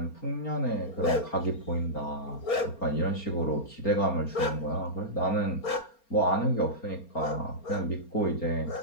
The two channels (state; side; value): late; right; 4.3 ms